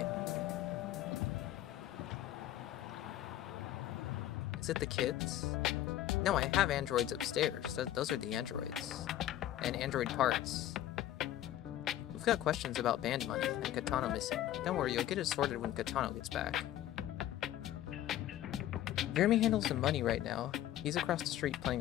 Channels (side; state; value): right; quieter; 12.9 dB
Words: Is it the kids? No, I have androids upstairs. Those are the androids. And android parts. We've got questions about band money and Katano missing. Don't worry, you'll get it sorted when Katano gets back. Jeremy handles the money right now. He's across the street